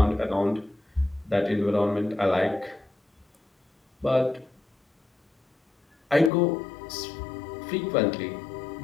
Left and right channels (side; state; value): right; drops out; at 6.3 s